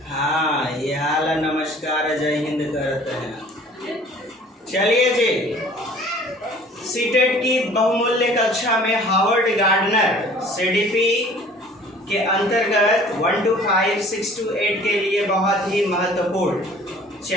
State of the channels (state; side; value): normal; both; correlation 0.50